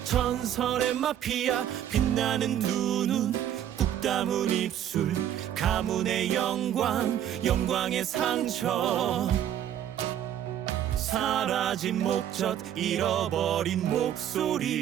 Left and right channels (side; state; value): left; quieter; 10.7 dB